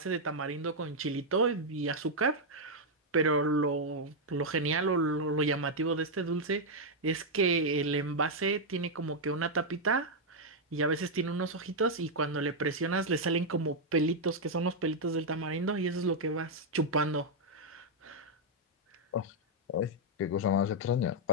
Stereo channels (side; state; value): both; normal; correlation -0.02